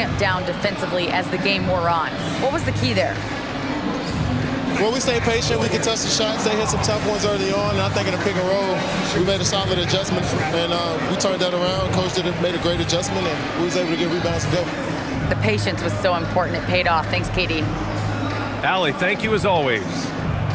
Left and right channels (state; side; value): identical; both; correlation 1.00